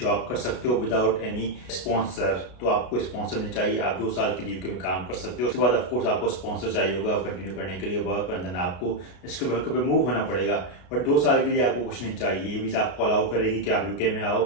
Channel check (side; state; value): right; late; 33 ms